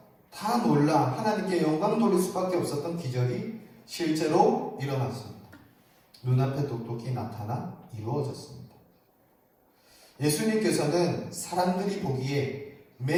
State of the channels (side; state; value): both; identical; correlation 1.00